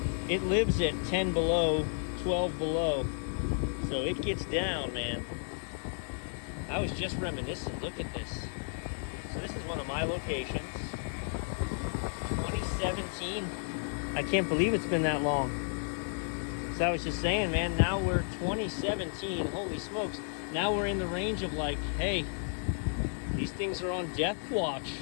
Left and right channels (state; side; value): silent; right; digital silence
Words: It lives at 10 below, 12 below. So it gets down, man. I was just reminiscing. Look at this. So this is one of my locations. 2017. I can't believe it's been that long. So I was just saying, man, now we're 2017. Holy smokes. Now we're in the range of like, hey, these things are on death watch.